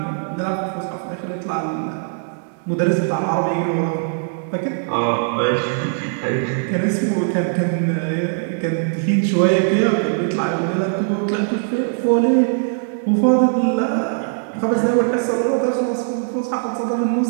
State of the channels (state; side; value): silent; left; digital silence